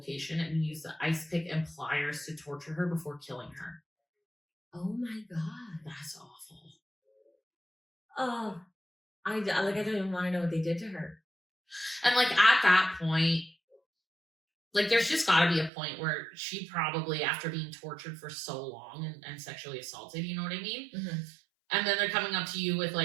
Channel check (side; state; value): left; drops out; at 15.7 s